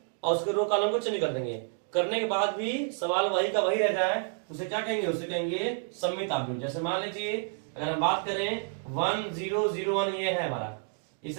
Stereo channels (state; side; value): silent; left; 58 dB below the other